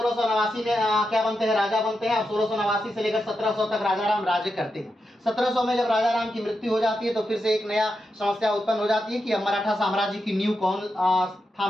में क्या बनते हैं, राजा बनते हैं और 1689 से लेकर 1700 तक राजा राम राज्य करते हैं। 1700 में जब राजा राम की मृत्यु हो जाती है तो फिर से एक नया समस्या उत्पन्न हो जाती है कि अब मराठा साम्राज्य की नींव कौन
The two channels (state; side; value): normal; both; correlation 0.87